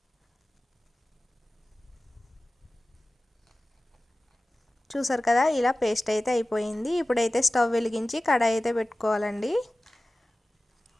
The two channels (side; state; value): both; normal; correlation 0.97